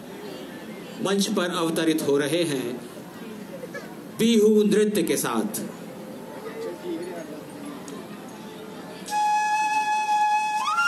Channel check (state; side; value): identical; both; correlation 1.00